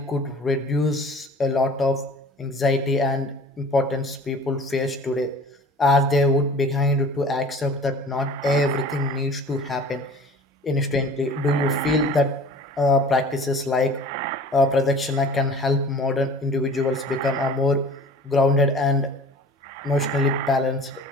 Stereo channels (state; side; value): normal; both; correlation 0.45